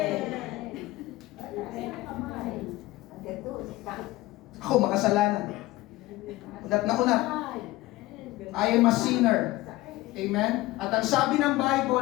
Ako makasalanan. Unat na unat. I am a sinner. Amen? At ang sabi ng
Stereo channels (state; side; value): quieter; right; 18.4 dB